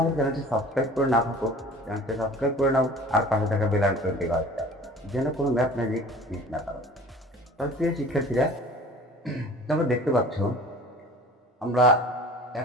আমার চ্যানেলটি সাবস্ক্রাইব করে না থাকো, চ্যানেলটি সাবস্ক্রাইব করে নাও আর পাশে থাকা বেল আইকনটি বাজাও, যেন কোনো ম্যাথ ম্যাজিক মিস না করো। তাহলে প্রিয় শিক্ষার্থীরা, তোমরা দেখতে পাচ্ছ আমরা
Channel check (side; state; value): both; normal; correlation 0.44